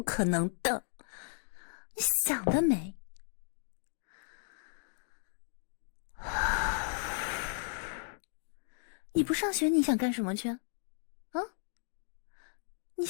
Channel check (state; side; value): silent; right; digital silence